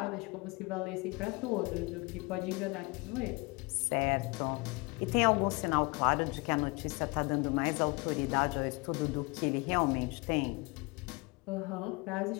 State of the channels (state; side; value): quieter; right; 27.4 dB